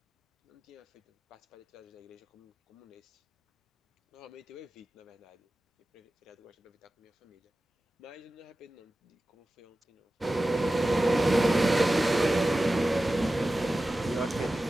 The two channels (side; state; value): both; normal; correlation 0.95